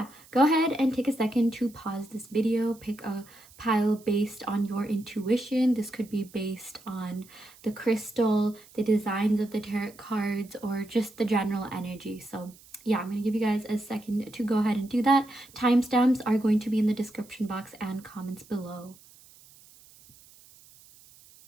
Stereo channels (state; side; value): noise; right; hiss, 24 dB below the sound